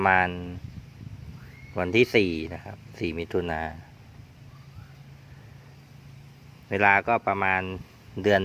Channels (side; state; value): both; identical; correlation 1.00